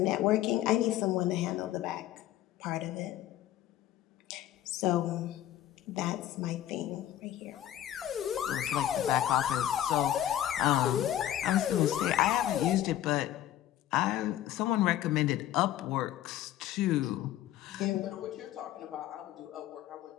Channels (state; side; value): quieter; right; 12.6 dB